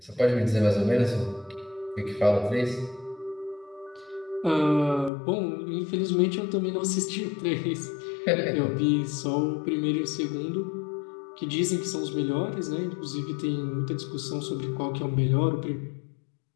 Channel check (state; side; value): drops out; right; at 5.1 s